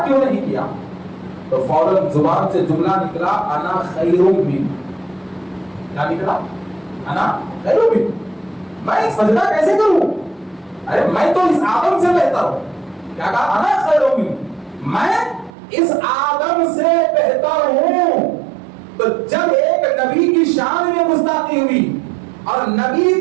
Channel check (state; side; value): drops out; left; at 15.5 s